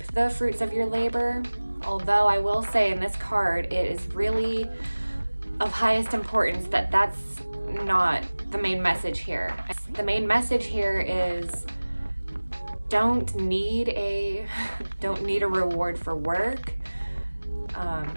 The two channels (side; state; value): both; inverted; correlation -1.00